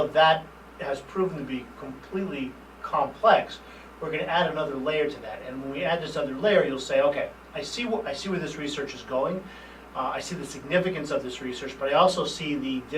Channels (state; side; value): identical; both; correlation 1.00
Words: that has proven to be completely complex, we're going to add another layer to that. And when we add this other layer, you'll say, okay, I see where this research is going. I see the significance of this research, but I also see the